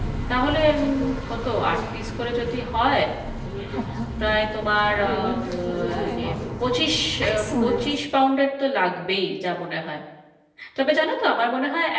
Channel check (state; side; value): identical; both; correlation 1.00